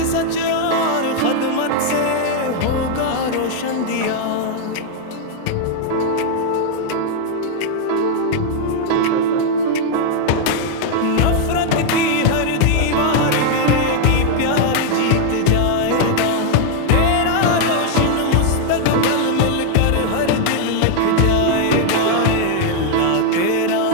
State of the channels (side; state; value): both; different; correlation 0.00